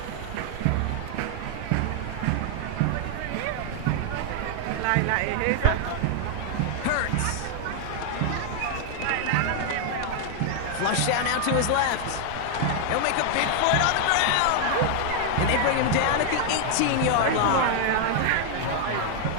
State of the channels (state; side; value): different; both; correlation 0.00